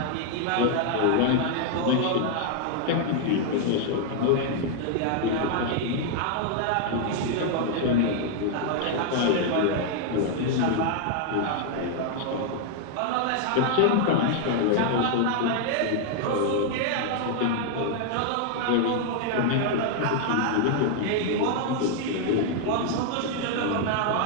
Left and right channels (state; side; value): different; both; correlation 0.00